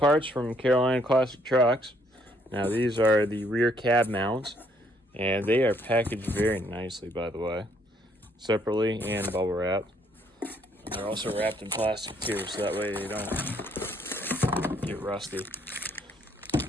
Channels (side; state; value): both; normal; correlation 0.67